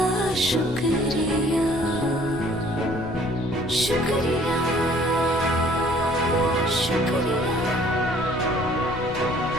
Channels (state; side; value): noise; left; rumble, 13 dB below the sound